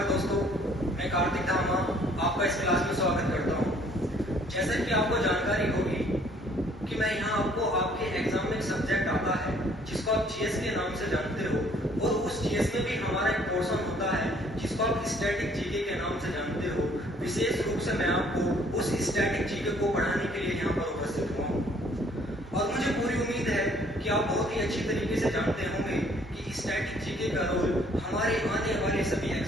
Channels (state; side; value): normal; both; correlation 0.60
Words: दोस्तों, मैं कार्तिक धामा आपका इस क्लास में स्वागत करता हूं। जैसा कि आपको जानकारी होगी कि मैं यहाँ आपको आपके एग्जाम में एक सब्जेक्ट आता है जिसको आप जीएस के नाम से जानते हो, और उस जीएस में भी हमारा एक पोर्शन होता है जिसको आप स्टैटिक जीके के नाम से जानते हो। विशेष रूप से मैं आपको उस स्टैटिक जीके को पढ़ाने के लिए यहाँ पर उपस्थित हुआ हूँ, और मुझे पूरी उम्मीद है कि आप बहुत ही अच्छी तरीके से जानते होंगे कि स्टैटिक जीके का रोल हमारे आने वाले सभी